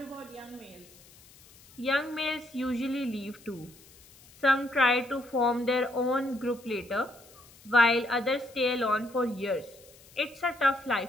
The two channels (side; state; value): left; noise; hiss, 24 dB below the sound